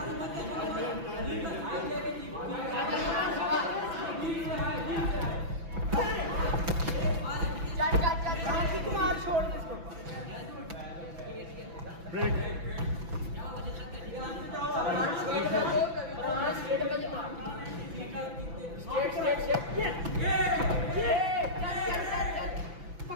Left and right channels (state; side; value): late; left; 6.0 ms